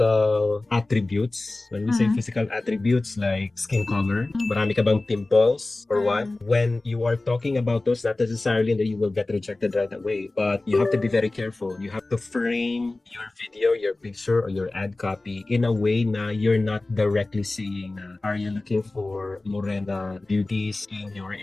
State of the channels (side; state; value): right; quieter; 3.0 dB